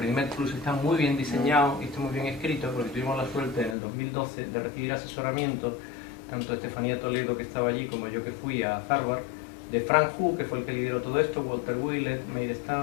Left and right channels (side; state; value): right; drops out; at 3.8 s